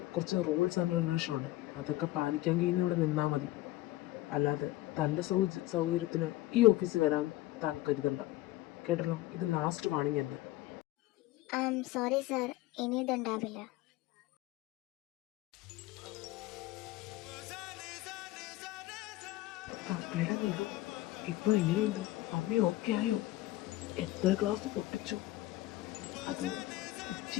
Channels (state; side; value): quieter; right; 16.9 dB